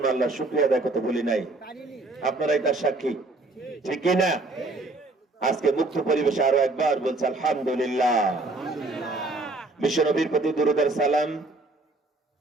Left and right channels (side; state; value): left; quieter; 3.1 dB